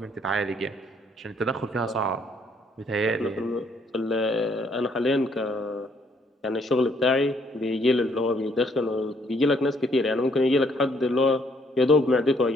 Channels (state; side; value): normal; both; correlation 0.67